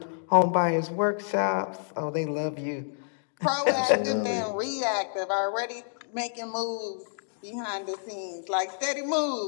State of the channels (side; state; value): right; silent; digital silence